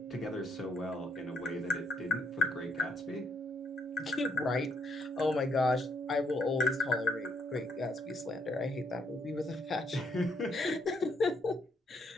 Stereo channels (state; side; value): normal; both; correlation 0.71